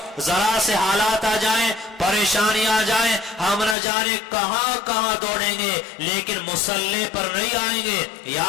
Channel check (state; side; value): drops out; right; at 3.8 s